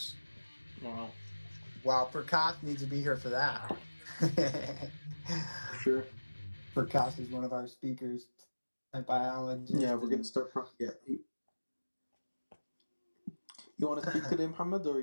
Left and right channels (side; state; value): both; inverted; correlation -1.00